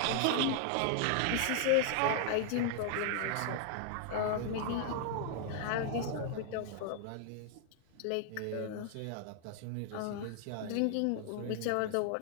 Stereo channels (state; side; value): different; both; correlation 0.00